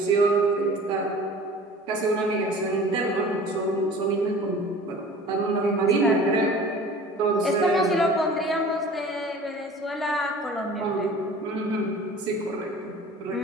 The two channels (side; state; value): both; normal; correlation 0.43